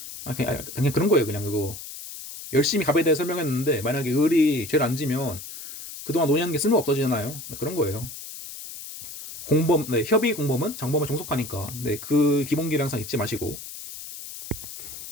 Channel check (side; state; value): left; noise; hiss, 11 dB below the sound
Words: 그냥 그런 거예요. 그냥 그거 열심히 갑에 대해 설명했는데 만약에 을이 죄를 안 지면 그동안 논의한 게 쓸모 없어지잖아요. 그런 거예요. 협의 공범은 정범을 종속하니까 그 기본기를 항상 잊지 마시고.